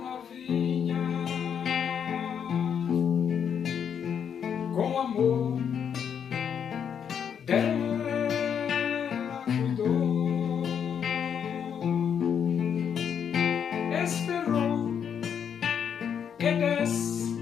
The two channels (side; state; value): right; quieter; 7.9 dB